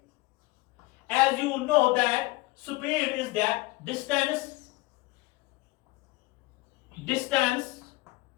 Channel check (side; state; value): right; quieter; 21.3 dB